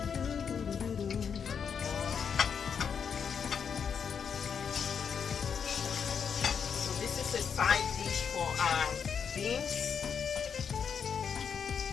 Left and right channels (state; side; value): quieter; right; 6.9 dB